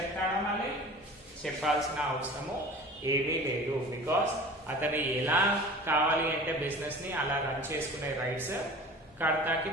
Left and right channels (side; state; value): both; normal; correlation 0.40